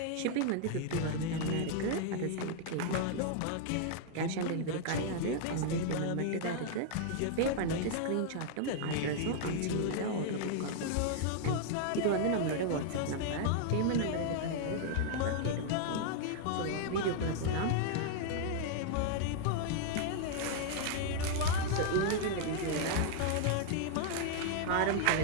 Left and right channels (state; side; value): different; both; correlation 0.00